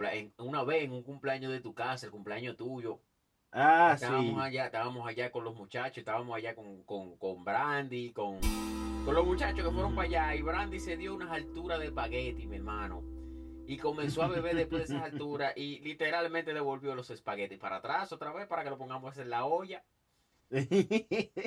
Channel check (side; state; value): both; identical; correlation 1.00